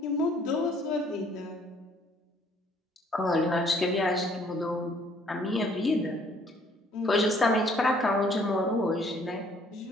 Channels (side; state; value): both; normal; correlation 0.61